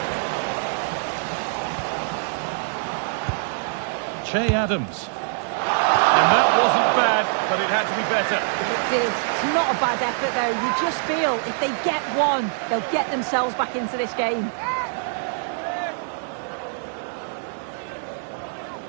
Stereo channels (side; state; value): left; silent; digital silence